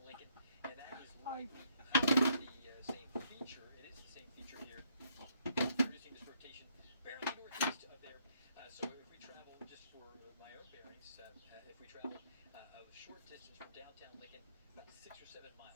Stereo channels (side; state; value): both; inverted; correlation -0.70